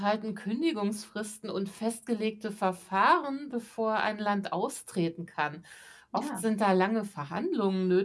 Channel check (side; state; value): both; identical; correlation 1.00